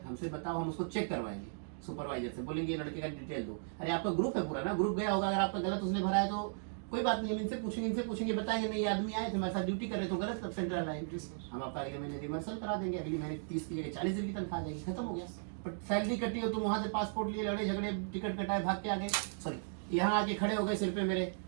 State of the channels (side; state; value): left; silent; digital silence